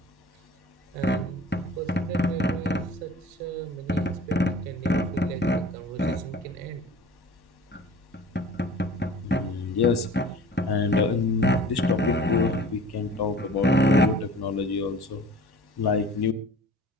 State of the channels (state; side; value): normal; both; correlation 0.44